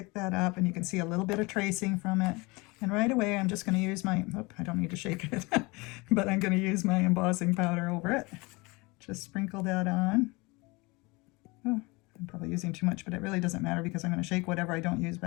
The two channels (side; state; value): right; quieter; 25.3 dB